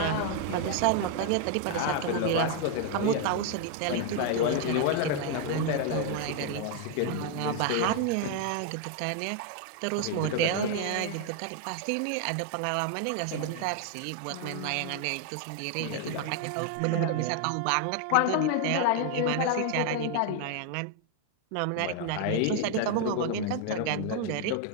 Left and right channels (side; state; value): both; different; correlation 0.00